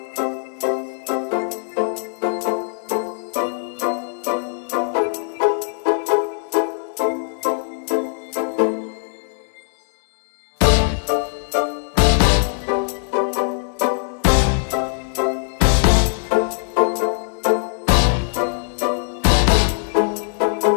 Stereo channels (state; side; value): silent; right; digital silence